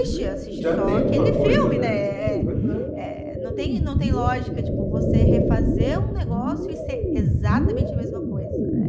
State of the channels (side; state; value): both; identical; correlation 1.00